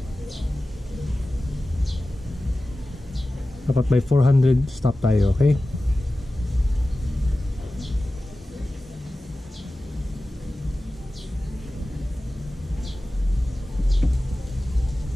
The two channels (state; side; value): normal; both; correlation 0.95